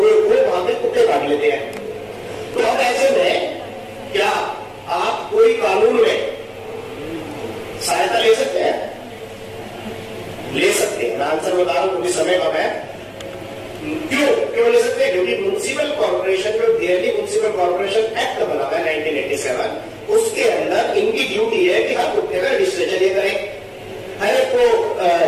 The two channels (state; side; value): identical; both; correlation 1.00